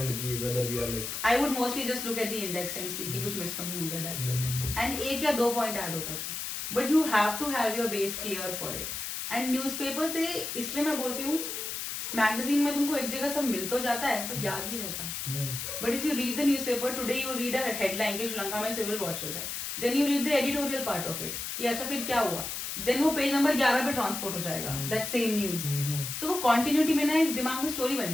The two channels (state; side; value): noise; left; hiss, 5 dB below the sound